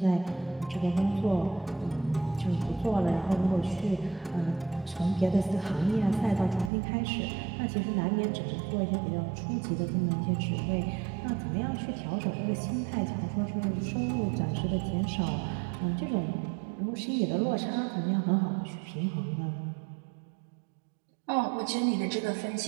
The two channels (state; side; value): drops out; left; at 6.7 s